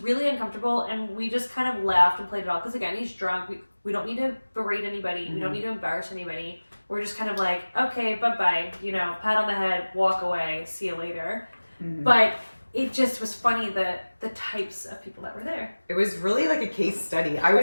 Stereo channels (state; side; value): inverted; both; correlation -1.00